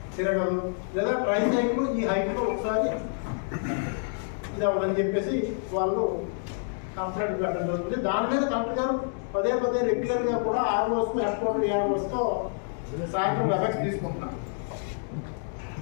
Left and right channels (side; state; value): right; silent; digital silence